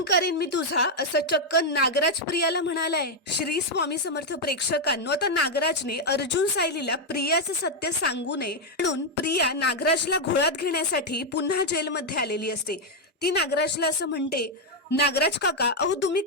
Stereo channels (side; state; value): both; normal; correlation 0.01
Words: करेन मी तुझा, असं चक्क नागराज प्रियाला म्हणालाय. श्री स्वामी समर्थ प्रेक्षकांनो, आता नागराजने अर्जुन सायलीला प्रियाचं सत्य सांगू नये म्हणून प्रिया नागराजला घोळात घेण्यासाठी पुन्हा जेलमध्ये आलेली असते. ती नागराजला असं म्हणते, नागराज काका, अहो तुम्ही